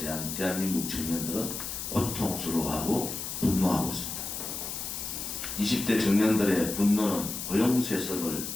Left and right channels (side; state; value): left; noise; hiss, 5 dB below the sound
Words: 대한민국 청년들은 고통스러워하고 분노하고 있습니다. 20대 청년들의 분노는 고용세습을